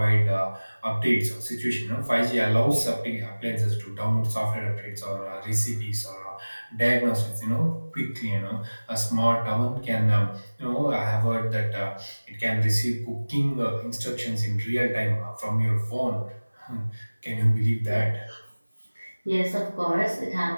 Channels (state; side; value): inverted; both; correlation -1.00